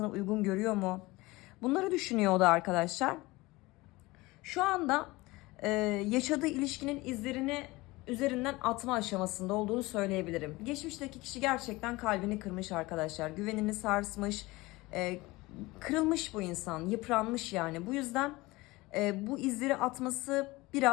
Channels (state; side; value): quieter; right; 21.2 dB